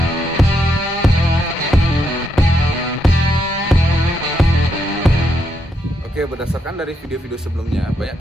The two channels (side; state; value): both; normal; correlation 0.79